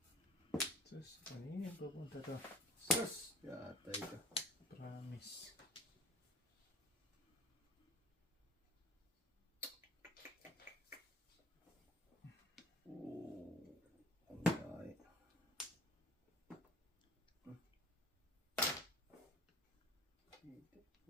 Sus, kanina pupunta to. Sus. Yatay ka. Promise. Ay.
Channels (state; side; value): normal; both; correlation 0.46